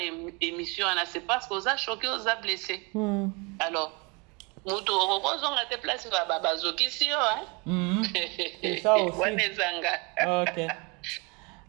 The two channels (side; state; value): left; quieter; 29.1 dB